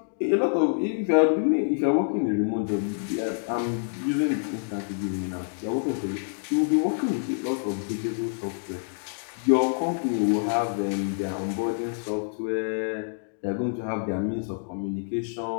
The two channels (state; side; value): silent; right; digital silence